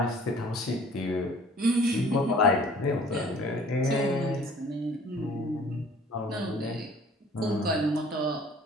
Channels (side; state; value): both; normal; correlation 0.52